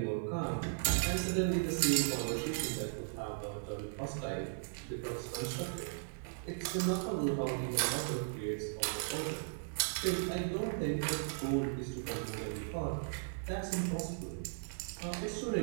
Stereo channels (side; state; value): left; silent; 53 dB below the other